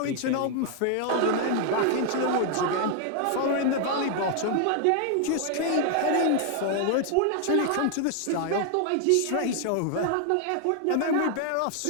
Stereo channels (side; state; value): both; different; correlation 0.00